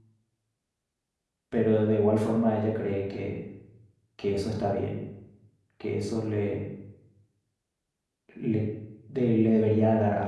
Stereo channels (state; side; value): identical; both; correlation 1.00